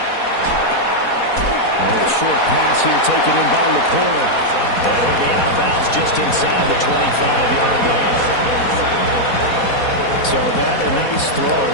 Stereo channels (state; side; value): late; right; 4.1 ms